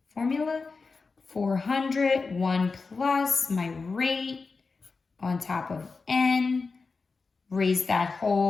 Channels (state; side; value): quieter; right; 4.4 dB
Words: formula. 400, 1 plus my rate on top of N. Raise that